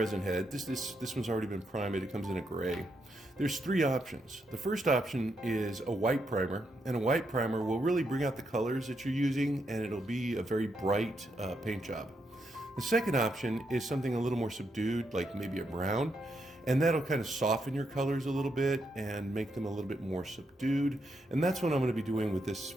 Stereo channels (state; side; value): normal; both; correlation 0.80